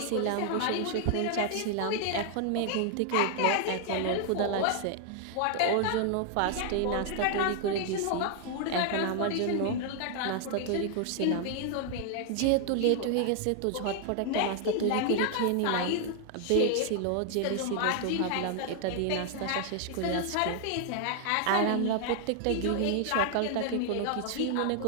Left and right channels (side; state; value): both; different; correlation 0.00